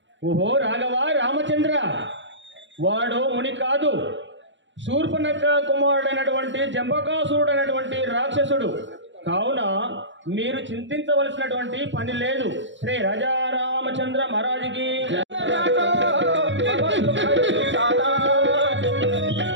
ఓహో రాఘవ రామచంద్ర, వాడు ముని కాదు, శూర్పణఖ కుమారుడైనటువంటి జంబకాసురుడు అయినటువంటి రాక్షసుడు. కావున మీరు చింతించవలసినటువంటి పని లేదు. శ్రీ రాజా రామచంద్ర మహారాజుకి రాజా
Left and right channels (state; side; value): late; left; 0.54 ms